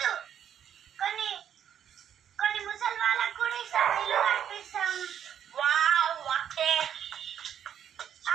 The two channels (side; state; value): left; quieter; 9.3 dB